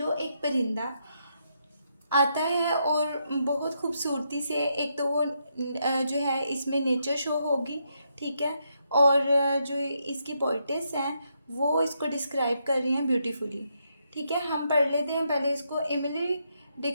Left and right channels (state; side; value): inverted; both; correlation -0.79